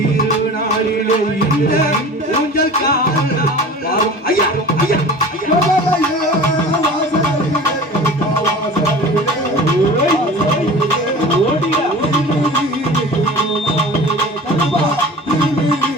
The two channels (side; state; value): both; normal; correlation 0.39